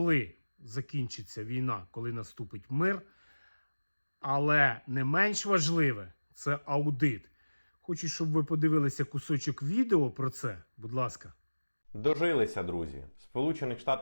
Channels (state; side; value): inverted; both; correlation -1.00